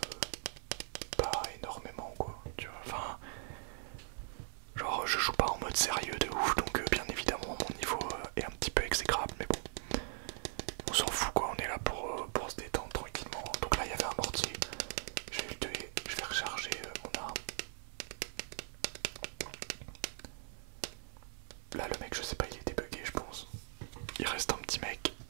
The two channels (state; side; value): silent; left; 51 dB below the other